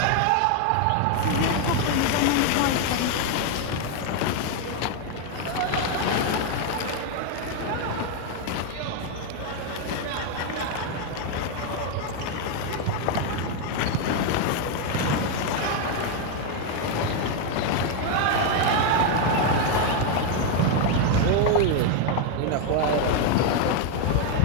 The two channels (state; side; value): different; both; correlation 0.01